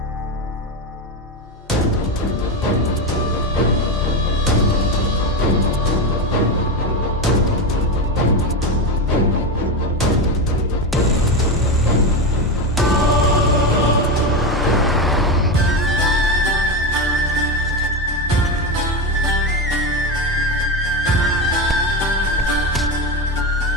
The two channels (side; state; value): both; normal; correlation 0.15